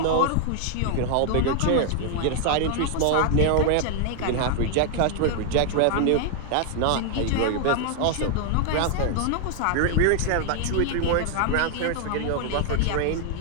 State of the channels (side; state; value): both; different; correlation 0.00